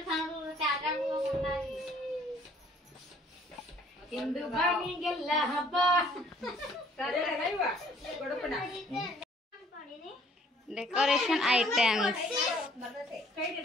ನೋಡಿ ಇಂದು ಬಾನಿಗೆಲ್ಲ ಹಬ್ಬ. Decoration items.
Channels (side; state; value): both; normal; correlation 0.60